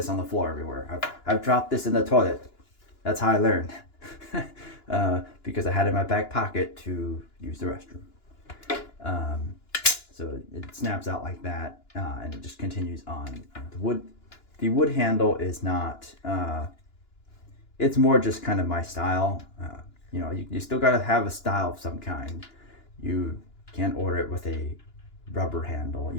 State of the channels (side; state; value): right; late; 2.9 ms